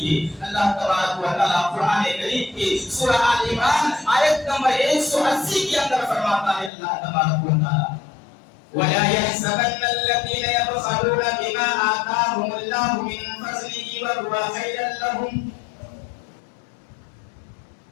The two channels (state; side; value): drops out; right; at 6.7 s